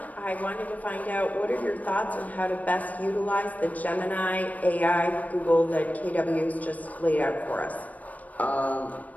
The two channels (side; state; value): right; late; 0.073 ms